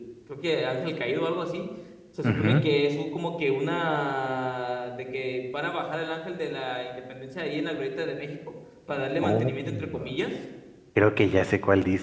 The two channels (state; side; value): identical; both; correlation 1.00